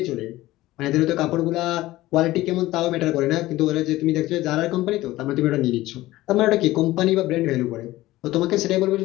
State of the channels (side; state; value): right; quieter; 17.1 dB